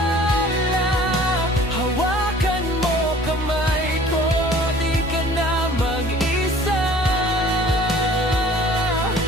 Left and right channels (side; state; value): both; normal; correlation 0.50